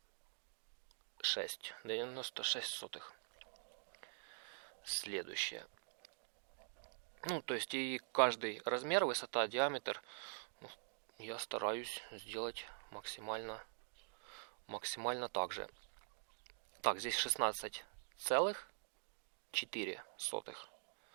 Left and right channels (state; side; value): silent; left; digital silence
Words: сотых. Следующее. Ну, то есть и каждый размер, высота, диаметр, я стараюсь сделать максимально так же. Так, здесь 16 целых 4 сотых.